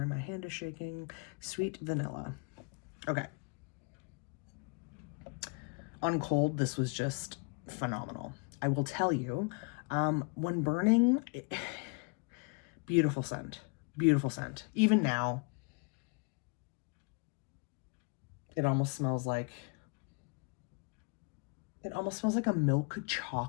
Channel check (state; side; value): quieter; right; 34.0 dB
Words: my hand is shaking. Sweet vanilla. Okay. On cold, this was just phenomenal. I will tell you, when burning, beautiful scent. Beautiful scent. Even now, it almost smells like a milk